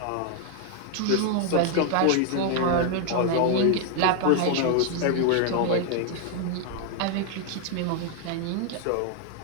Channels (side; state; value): both; different; correlation 0.00